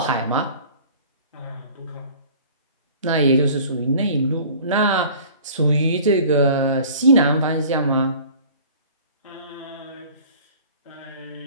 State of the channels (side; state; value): both; inverted; correlation -0.47